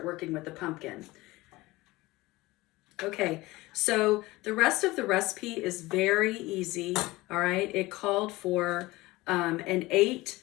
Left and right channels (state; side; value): quieter; right; 20.1 dB